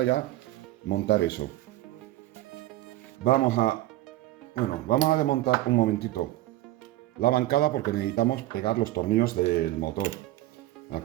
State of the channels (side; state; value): left; quieter; 15.9 dB